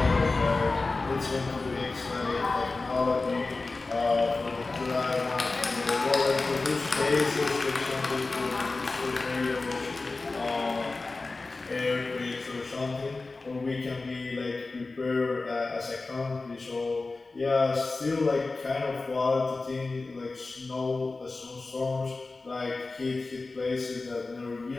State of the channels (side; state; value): right; quieter; 3.6 dB